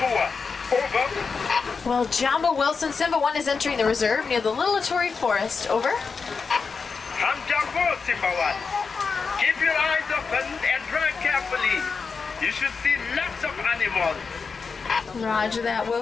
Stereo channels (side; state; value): right; quieter; 5.1 dB